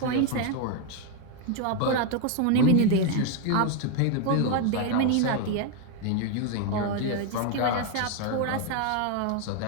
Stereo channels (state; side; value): different; both; correlation 0.01